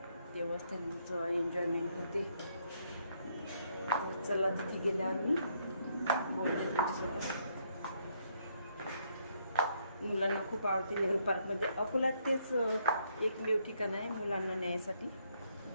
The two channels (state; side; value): inverted; both; correlation -0.72